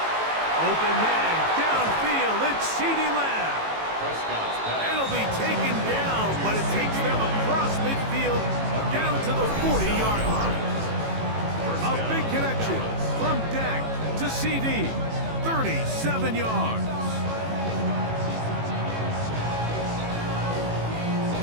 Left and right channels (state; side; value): late; left; 18 ms